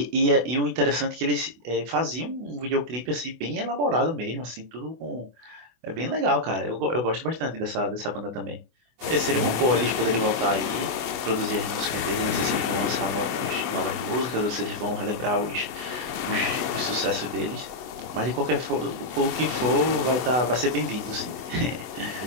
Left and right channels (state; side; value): late; left; 24 ms